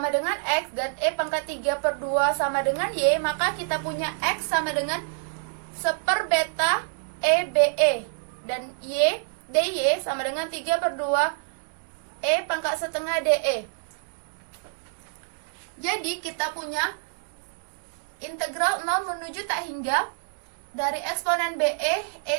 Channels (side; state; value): left; silent; digital silence